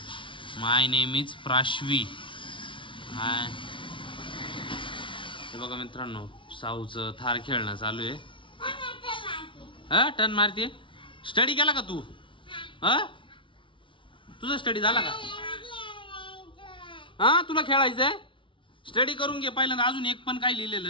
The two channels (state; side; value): late; right; 0.25 ms